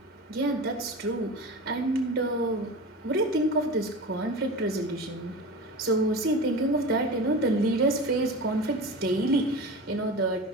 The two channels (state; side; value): normal; both; correlation 0.31